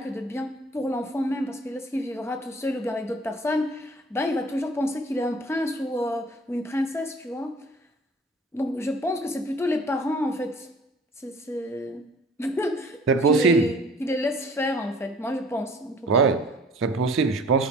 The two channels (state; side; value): normal; both; correlation 0.51